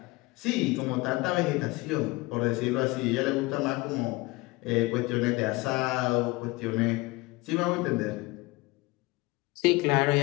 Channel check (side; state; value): right; quieter; 22.5 dB